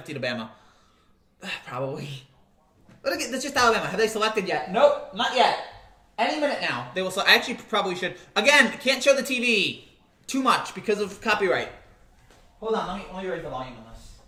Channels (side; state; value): both; identical; correlation 1.00